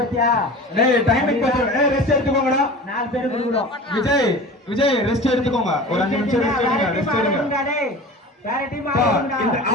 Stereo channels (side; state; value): both; normal; correlation 0.36